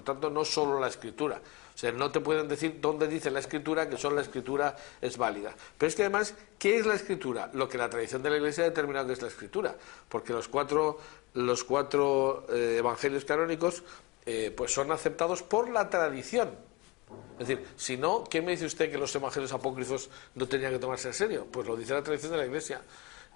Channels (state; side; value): quieter; right; 24.8 dB